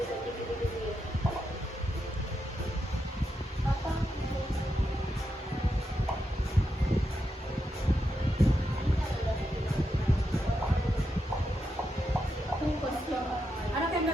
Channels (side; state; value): both; normal; correlation 0.85